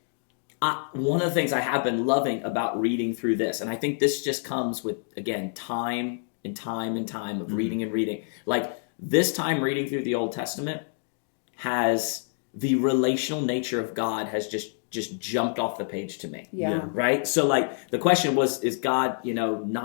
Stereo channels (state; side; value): silent; right; 60 dB below the other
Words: one of the things I have been loving about reading through this, and I think this just comes with, again, time and time and time of reading and reading. Like this time reading through the Old Testament has the relational nature of God has just jumped off the page to me. Yeah. Right? So like the question was, is God,